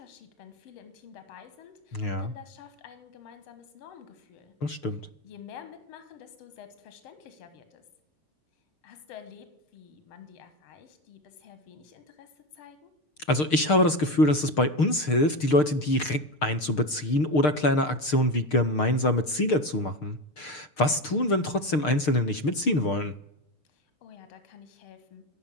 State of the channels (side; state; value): right; late; 6.6 ms